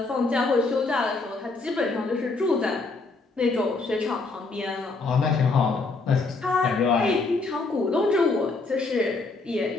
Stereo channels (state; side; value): quieter; right; 3.7 dB